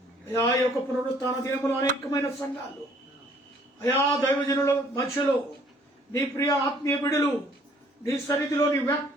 అయా ఈ యొక్క పునరుత్థాన దినములు అనేకమైన సంఘాలు అయా దైవజనుల మధ్యలో నీ ప్రియ ఆత్మీయ బిడులు నీ సన్నిధిలో నీ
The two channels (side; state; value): both; normal; correlation 0.60